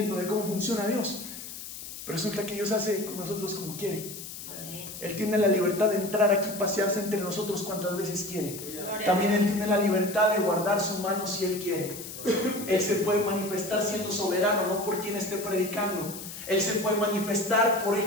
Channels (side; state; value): left; noise; hiss, 11 dB below the sound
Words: de cómo funciona Dios. Pero resulta que Dios hace con nosotros como quiere. Él tiene la libertad de entrar aquí, pasearse entre nosotros cuantas veces quiere. También Él tiene la libertad de guardar su mano si Él quiere. Él se puede manifestar siendo soberano, no por quien esté predicando. Él se puede manifestar por